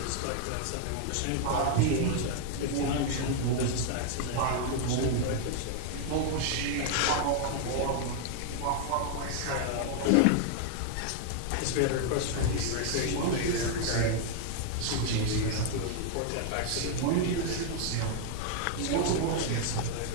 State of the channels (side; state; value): both; different; correlation 0.00